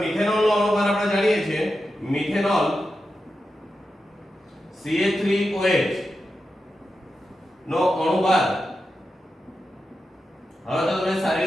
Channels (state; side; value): normal; both; correlation 0.90